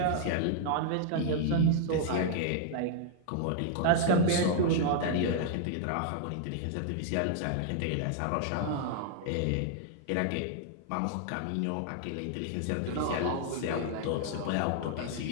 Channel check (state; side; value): different; both; correlation -0.01